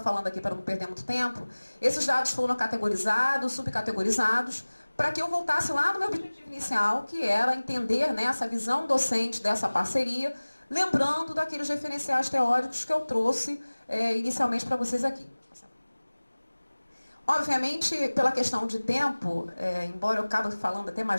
falando aqui para não perder muito tempo, esses dados foram categorizados, subcategorizados, para que eu voltasse lá no meu objetivo inicial, que era entender, né, essa visão docente dessa parceria, lembrando daqueles referenciais teóricos que eu trouxe inicialmente para vocês aqui. Obviamente, pela questão de tempo, embora eu acabe falando até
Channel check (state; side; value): inverted; both; correlation -1.00